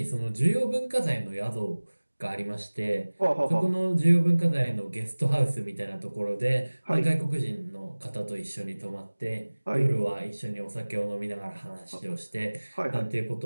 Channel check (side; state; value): both; inverted; correlation -1.00